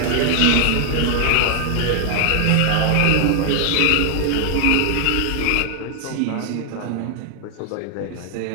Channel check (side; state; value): both; different; correlation 0.00